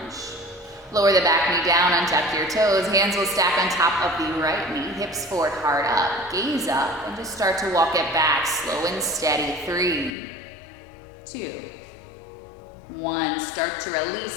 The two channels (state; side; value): drops out; right; at 10.2 s